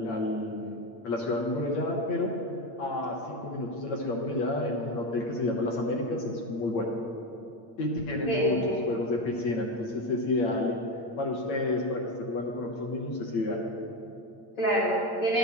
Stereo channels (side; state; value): right; late; 8.7 ms